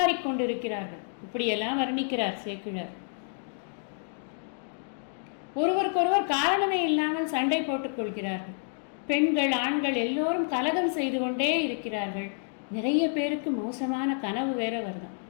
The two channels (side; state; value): right; silent; digital silence